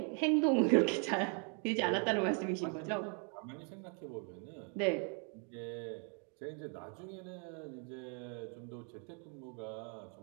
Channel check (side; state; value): left; quieter; 39.9 dB